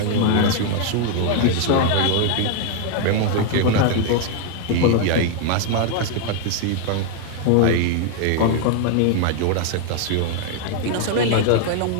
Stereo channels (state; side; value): different; both; correlation 0.00